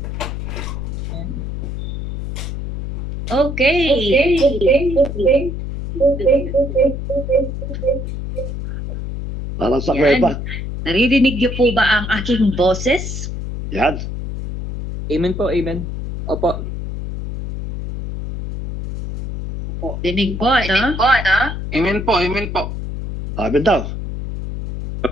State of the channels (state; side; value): noise; left; hum, 4 dB below the sound